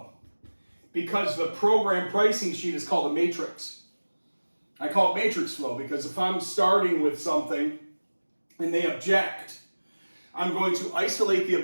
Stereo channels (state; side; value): inverted; both; correlation -1.00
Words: because the program pricing sheet is called a matrix. I call it matrix flow because if I'm starting with something and they object, I'm going to isolate the